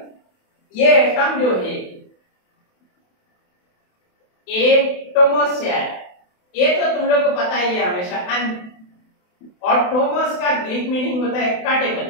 ये एटम जो है एटोमोस है। ये तो तुम लोग को पता ही है हमेशा। और टोमस का ग्रीक मीनिंग होता है कटेबल,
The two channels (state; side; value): late; right; 28 ms